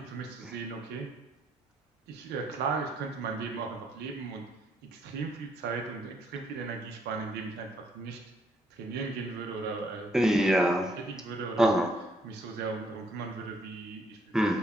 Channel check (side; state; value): both; normal; correlation 0.70